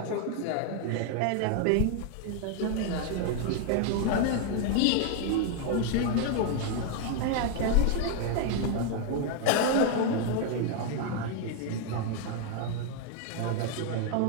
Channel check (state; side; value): different; both; correlation 0.00